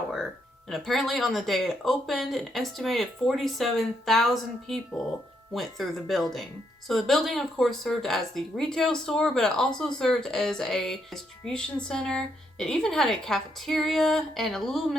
And apparently on the day it opened, an estimated 47,000 people went through the building. So the building, of course, served as the retail store, but it also served as a distribution center. It even had a cafeteria and a little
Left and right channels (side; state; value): both; normal; correlation 0.77